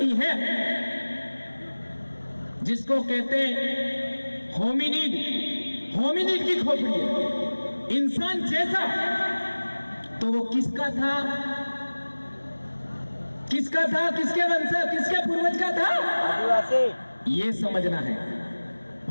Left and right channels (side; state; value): both; inverted; correlation -1.00